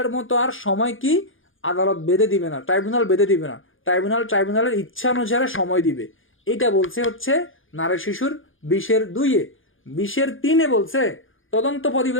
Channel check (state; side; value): late; right; 0.58 ms